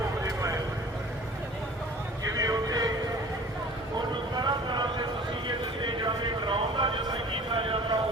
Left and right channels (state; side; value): normal; both; correlation 0.45